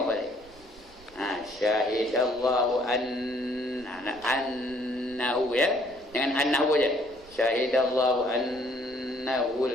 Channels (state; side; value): noise; right; rumble, 24 dB below the sound